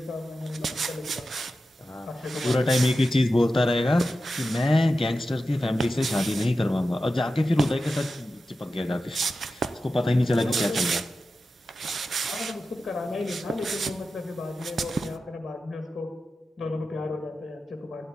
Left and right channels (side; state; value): both; normal; correlation 0.92